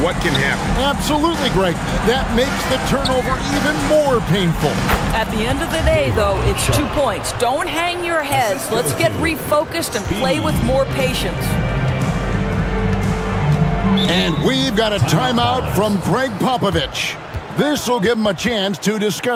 what can happen. Absolutely, Greg. That makes the turnover even more painful. At the end of the day, though, it's 2 points. Don't hang your heads. Let's get refocused and play with more patience. And we've got a timeout from Greg Popovich. This will give him a chance to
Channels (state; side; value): identical; both; correlation 1.00